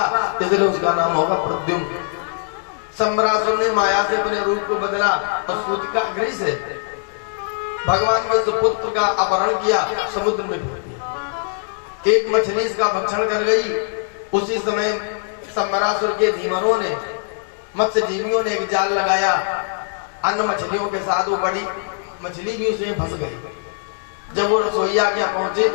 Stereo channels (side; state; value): right; silent; digital silence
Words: इसलिए उसका नाम होगा प्रद्युम्न। सम्रासुर ने माया से अपने रूप को बदला और सूतिका गृह से भगवान के सुपुत्र का अपहरण किया, समुद्र में फेंक दिया। एक मछली इसका भक्षण कर गई। उसी समय सम्रासुर के धीमरों ने, मत्स्य जीवियों ने एक जाल लगाया अन्य मछलियों के साथ। वो बड़ी मछली भी उसमें फंस गई। जब वो रसोईया के पहुंचे